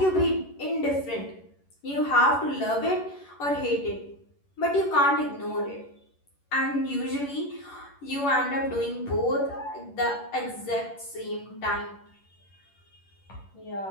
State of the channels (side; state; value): right; late; 11 ms